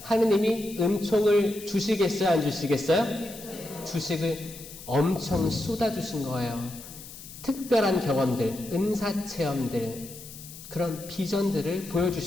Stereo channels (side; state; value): left; noise; hiss, 15 dB below the sound